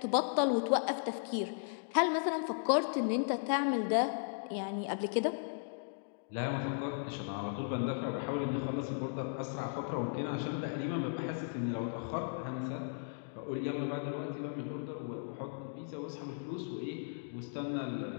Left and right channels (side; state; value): right; silent; digital silence